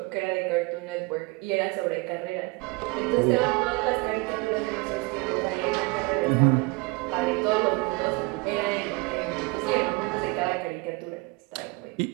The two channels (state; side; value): quieter; left; 25.8 dB